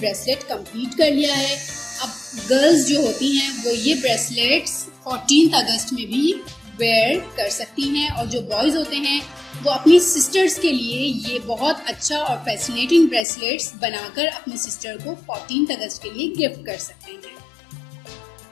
कंप्लीट कर लिया है. अब गर्ल्स जो होती हैं वो ये ब्रेसलेट्स 14th अगस्त में भी वेयर कर सकती हैं और जो बॉयज़ होते हैं वो अपनी सिस्टर्स के लिए ये बहुत अच्छा और फैसिनेटिंग ब्रेसलेट्स बनाकर अपनी सिस्टर को 14th अगस्त के लिए गिफ्ट कर सकते हैं.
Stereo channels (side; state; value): right; drops out; at 13.2 s